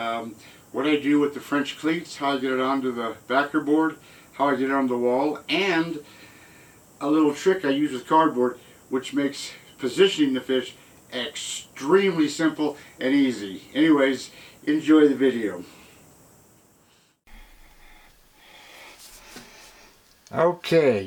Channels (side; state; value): both; identical; correlation 1.00